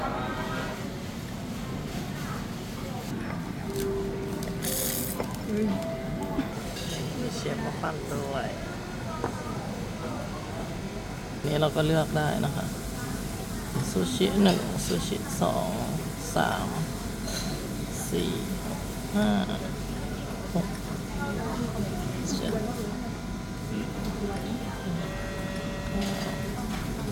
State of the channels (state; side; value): identical; both; correlation 1.00